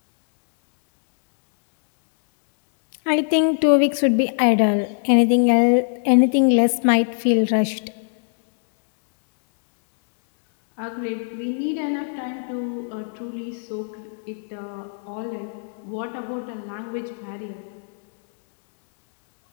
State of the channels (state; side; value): silent; right; digital silence